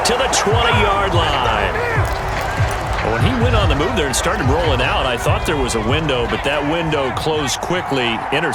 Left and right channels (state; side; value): identical; both; correlation 1.00